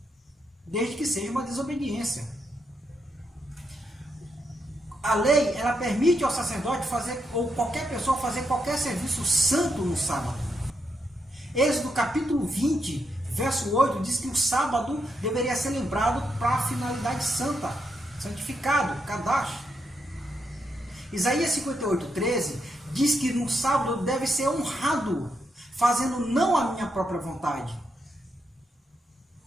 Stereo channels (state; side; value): normal; both; correlation 0.81